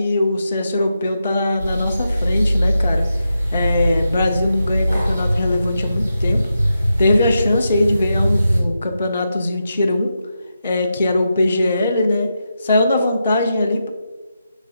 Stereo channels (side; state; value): both; inverted; correlation -0.87